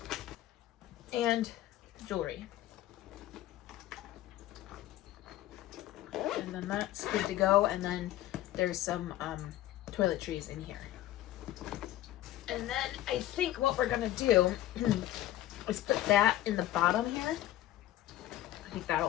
and jewelry. And then that's good to go, and then there's some toiletries in here. And then I think what we're gonna do is put that in the bottom here. I think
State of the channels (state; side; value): quieter; right; 14.2 dB